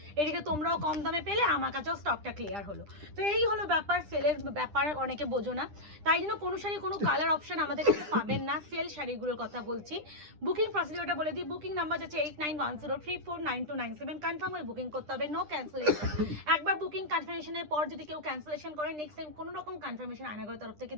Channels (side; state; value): left; late; 9.9 ms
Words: এদিকে তোমরাও কম দামে পেলে, আমার কাছেও স্টকটা ক্লিয়ার হলো। তো এই হলো ব্যাপার, সেলের ব্যাপার অনেকে বোঝো না, তাই জন্য কোনো শাড়ি কোনো কালার অপশন আমাদের কাছে পাবেন না। সেল শাড়িগুলোর কথা বলছি। বুকিং প্রসিডিওরটা বলে দিই। বুকিং নাম্বার আছে 8910349297। কনফার্ম হয়ে বুকিং করতে হবে, নো ক্যান্সেলেশন। একবার বুকিং কনফার্মেশনের পর যদি কেউ ক্যান্সেলেশন করে, নেক্সট টাইম কোনো রকম কনফার্মেশন আয়নাগরের তরফ থেকে